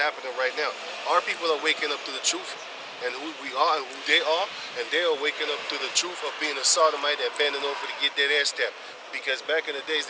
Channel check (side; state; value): both; identical; correlation 1.00